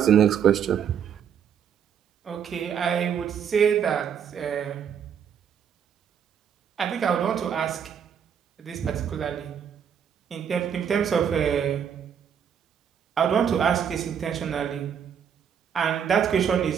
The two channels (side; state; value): left; quieter; 8.1 dB